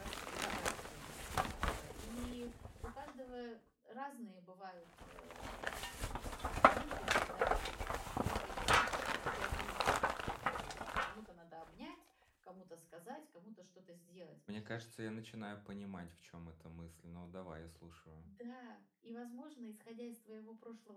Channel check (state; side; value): identical; both; correlation 1.00